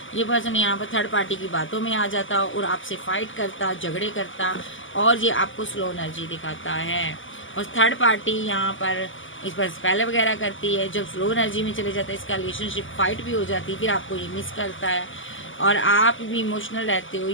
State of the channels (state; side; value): late; right; 0.57 ms